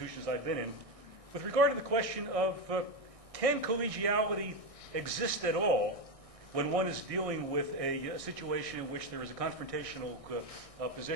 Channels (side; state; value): left; late; 1.6 ms